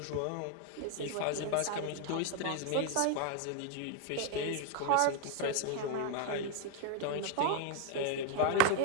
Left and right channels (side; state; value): both; different; correlation 0.01